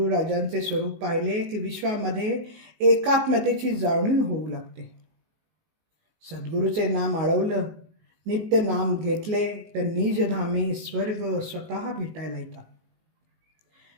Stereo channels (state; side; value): late; left; 19 ms